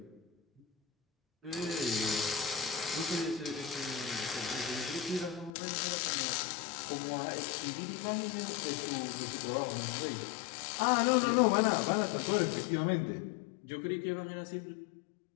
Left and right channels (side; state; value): right; drops out; at 5.5 s